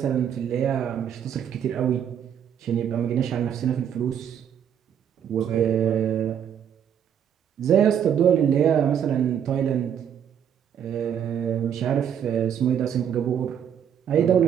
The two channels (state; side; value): quieter; left; 8.8 dB